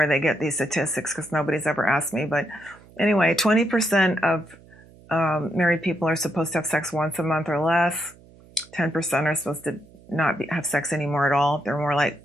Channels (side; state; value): right; noise; hum, 25 dB below the sound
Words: they get these statistics because nobody's ever asked me, but anyway, 20% of married people are supposed to have sex once a month or less. 10% are supposed to not have sex anymore at all. They're more like